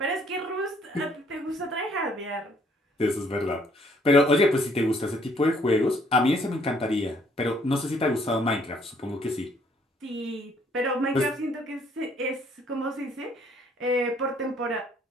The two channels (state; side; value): normal; both; correlation 0.64